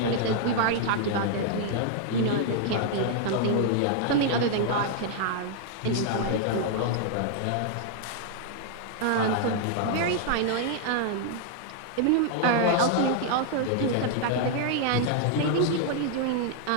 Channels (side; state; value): both; different; correlation 0.00